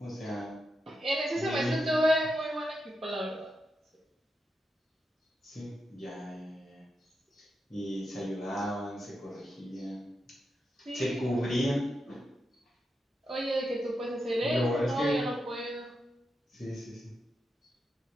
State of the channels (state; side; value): normal; both; correlation 0.86